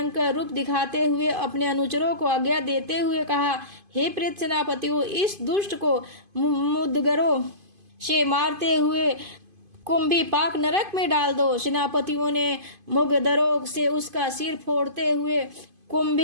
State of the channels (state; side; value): late; left; 2.5 ms